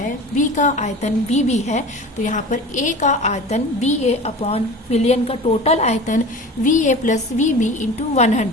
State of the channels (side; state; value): both; normal; correlation 0.36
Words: B का आयतन VB है, तो यहाँ पर A का आयतन BA अपॉन विलयन का टोटल आयतन VA प्लस VB इंटू